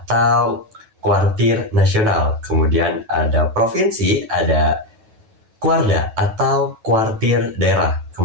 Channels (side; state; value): left; late; 9.2 ms